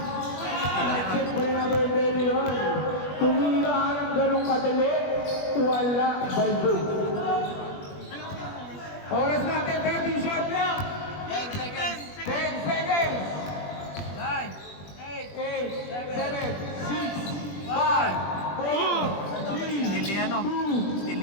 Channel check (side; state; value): right; late; 20 ms